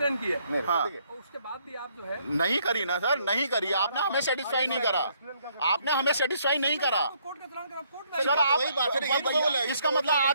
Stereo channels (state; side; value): inverted; both; correlation -0.69